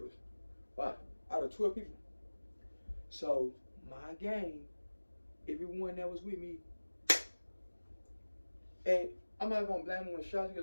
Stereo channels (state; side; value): inverted; both; correlation -1.00